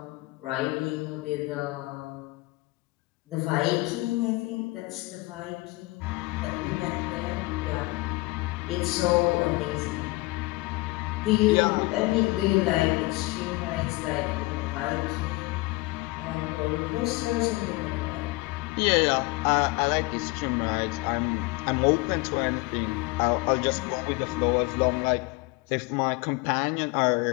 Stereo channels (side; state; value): right; quieter; 22.7 dB